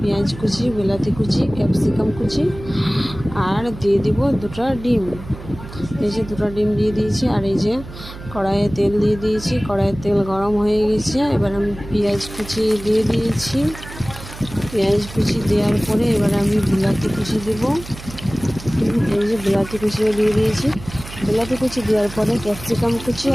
পেঁয়াজ কুচি, বিলাতি কুচি, ক্যাপসিকাম কুচি, আর দিয়ে দিব দুটো ডিম। এই যে দুটো ডিম দিয়ে দিয়েছি। আর এই যে কড়াইয়ে তেল দিয়ে দিয়েছি, কড়াইয়ের তেল গরম হয়ে গেছে। এবার আমি পেঁয়াজ কুচি দিয়ে দিয়েছি। পেঁয়াজ কুচি দেওয়ার পরে এবার আমি বিলাতি কুচি দেবো। এই যে বিলাতি কুচিও দিয়ে দিয়েছি। বিলাতি কুচি দেওয়ার পরে ক্যাপসিকাম কুচি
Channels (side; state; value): right; noise; hum, 14 dB below the sound